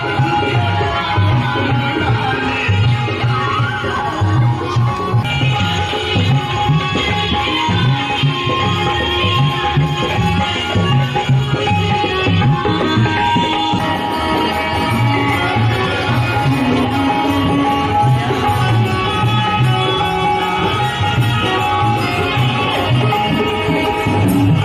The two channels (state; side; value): identical; both; correlation 1.00